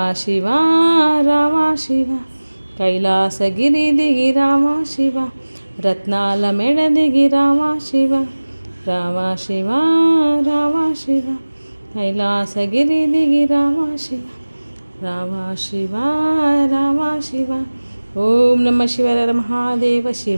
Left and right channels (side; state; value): both; inverted; correlation -1.00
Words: शिवा रामा शिवा कैलासगिरिदिगि रामा शिवा रत्नालमेळदिगि रामा शिवा रामा शिवा रामा शिवा कैलासगिरिदिगि रामा शिवा रामा शिवा रामा शिवा। ओम नमः शिवाय महादेव